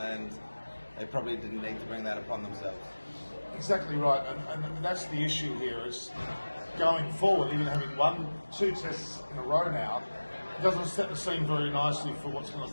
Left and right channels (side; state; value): both; inverted; correlation -1.00